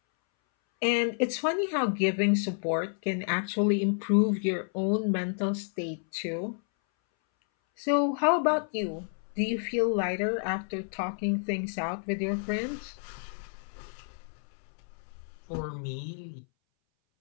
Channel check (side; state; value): right; silent; 58 dB below the other